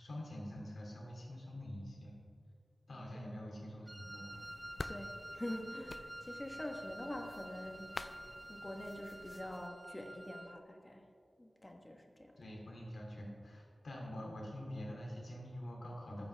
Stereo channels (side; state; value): both; normal; correlation 0.97